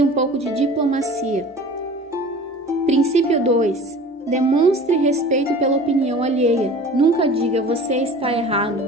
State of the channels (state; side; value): normal; both; correlation 0.42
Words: pouco de diplomacia. Princípio 2. Demonstre respeito pela opinião alheia. Nunca diga você está errado.